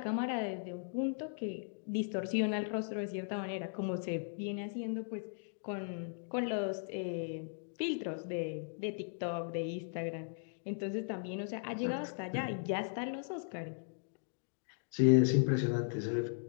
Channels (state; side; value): silent; right; digital silence